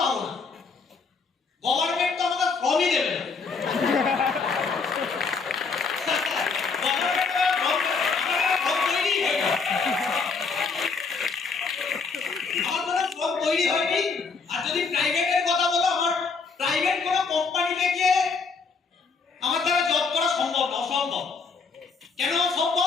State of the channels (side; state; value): right; quieter; 4.8 dB